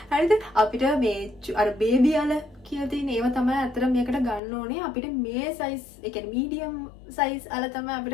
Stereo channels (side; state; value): right; drops out; at 4.4 s